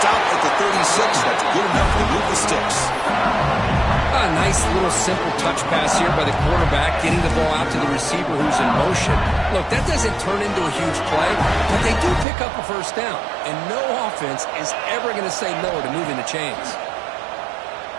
Stop at the 36. That's good enough to move the sticks. A nice little simple touch pass here by the quarterback, getting the ball out to the receiver who's in motion. Look, that doesn't turn into a huge play, but they do pick up a first down, and no offense is ever going to say no to moving the chains.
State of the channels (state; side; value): drops out; left; at 12.2 s